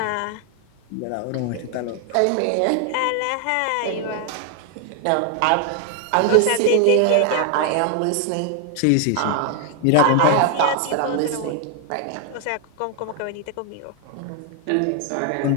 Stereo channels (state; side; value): different; both; correlation 0.00